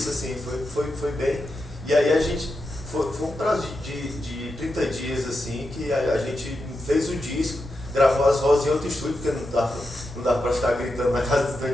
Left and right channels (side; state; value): both; normal; correlation 0.87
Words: assim, foi bem. E aí a gente, foi um prazo de 30 dias, assim, que a gente fez o disco, gravou as vozes em outro estúdio, porque não dava pra ficar gritando na casa do